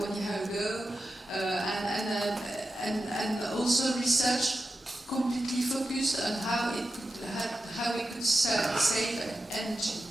1 year ago, and also research completely focused on how we could save energy.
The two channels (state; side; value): normal; both; correlation 0.91